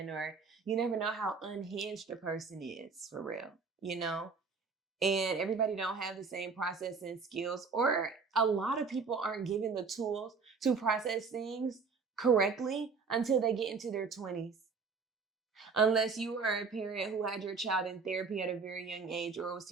or you never know how unhinged a person is for real, you know? And everybody don't have the same processing skills, or a lot of people aren't given the tools to process things correctly until they get into their 20s. Unless you are a parent who had your child in therapy at a very young age, or was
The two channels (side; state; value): left; quieter; 4.9 dB